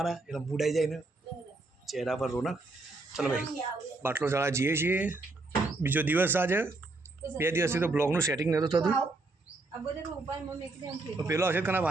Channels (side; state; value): left; quieter; 3.2 dB